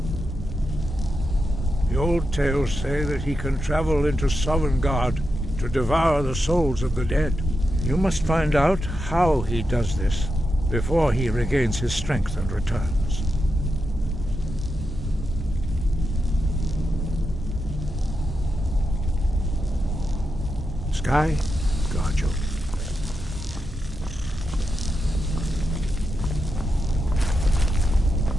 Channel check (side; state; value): both; normal; correlation 0.87